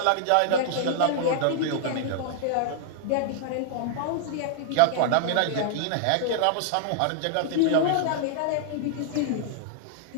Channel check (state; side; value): different; both; correlation -0.01